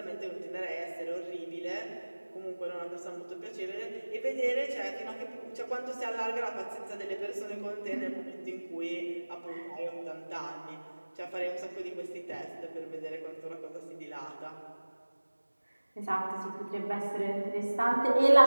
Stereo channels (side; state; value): both; inverted; correlation -1.00